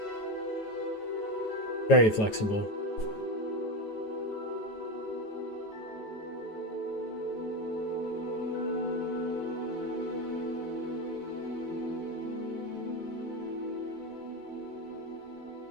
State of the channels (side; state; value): right; late; 9.3 ms